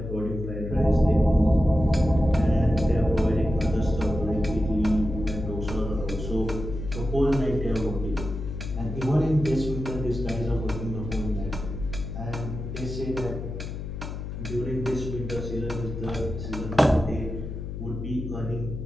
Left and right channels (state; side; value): noise; left; hum, 7 dB below the sound